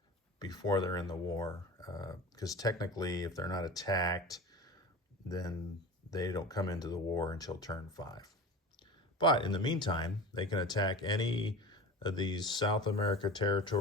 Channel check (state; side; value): normal; both; correlation 0.33